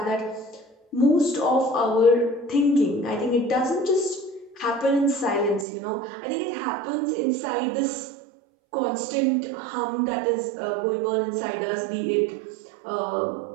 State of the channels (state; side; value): drops out; left; at 5.7 s